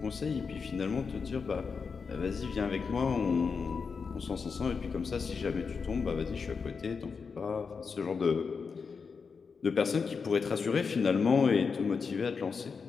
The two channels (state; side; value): quieter; right; 5.3 dB